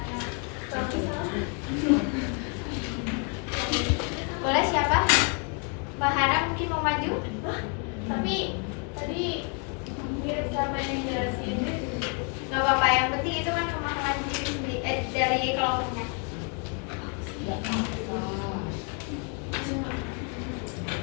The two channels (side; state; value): right; quieter; 37.8 dB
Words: Boleh siapa? Mbak Hana mungkin mau maju? Tapi tadi mirip sama yang jelasin. Gak apa-apa, yang penting itu kan pemahaman dari kelompoknya.